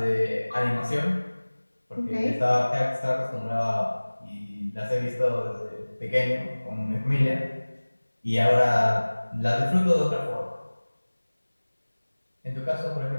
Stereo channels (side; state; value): both; inverted; correlation -1.00